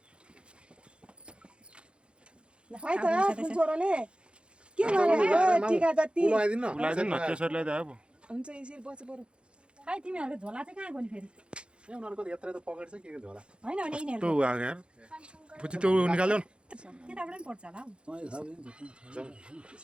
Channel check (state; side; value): late; left; 0.056 ms